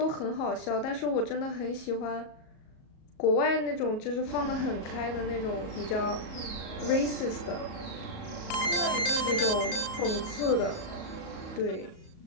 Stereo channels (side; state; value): right; late; 38 ms